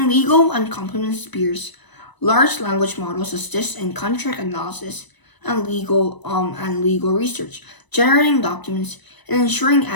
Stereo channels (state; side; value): late; right; 1.0 ms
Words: legal and compliance spheres, large language models assist in contract analysis and legal research, generating documents and ensuring